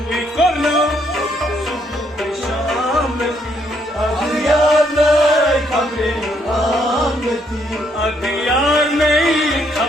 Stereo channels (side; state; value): both; normal; correlation 0.71